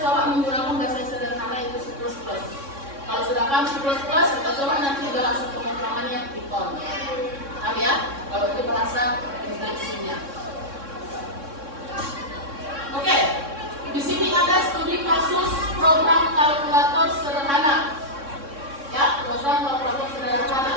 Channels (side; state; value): left; late; 3.6 ms